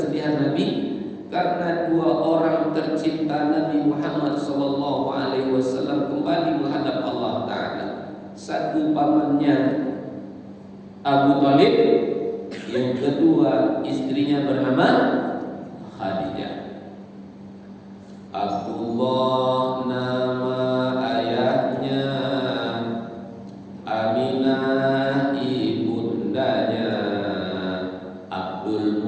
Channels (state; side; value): identical; both; correlation 1.00